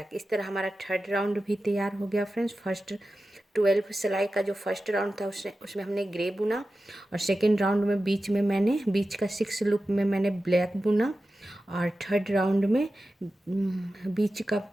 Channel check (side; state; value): both; normal; correlation 0.93